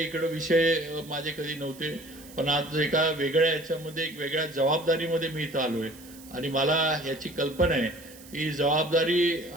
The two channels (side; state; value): right; noise; hiss, 20 dB below the sound